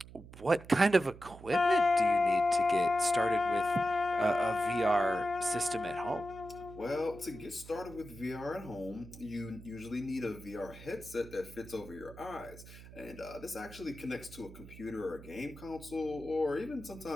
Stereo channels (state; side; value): noise; right; hum, 17 dB below the sound